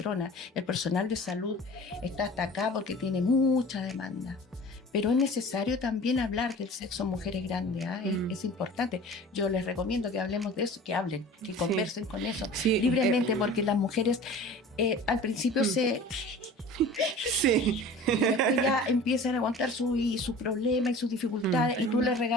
el personal de salud está hasta acá porque tiene mucha demanda, pero es necesario también hablar del sexo en mujeres grandes, ¿ah? Es importante. Yo les recomiendo que hablemos de eso, que hablen, que conversen con eso Sí, libremente, porque las mujeres al principio Sí. después ya empiezan a contar sus problemas y sus dificultades, y tú les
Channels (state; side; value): normal; both; correlation 0.41